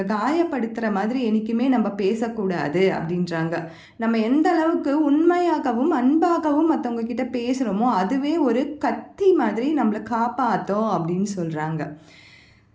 காயப்படுத்துகிற மாதிரி என்றைக்குமே நம்ம பேசக்கூடாது அப்படின்றாங்க. நம்ம எந்த அளவுக்கு உண்மையாகவும் அன்பாகவும் மற்றவங்க கிட்ட பேசுகிறோமோ அதுவே ஒரு கத்தி மாதிரி நம்மளை காப்பாற்றும் அப்படின்னு சொல்கிறாங்க.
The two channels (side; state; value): both; identical; correlation 1.00